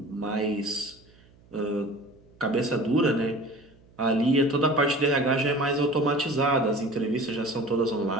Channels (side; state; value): right; noise; hum, 28 dB below the sound